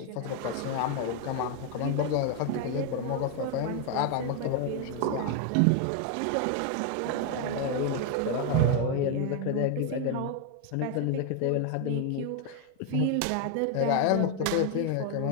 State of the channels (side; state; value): both; different; correlation 0.01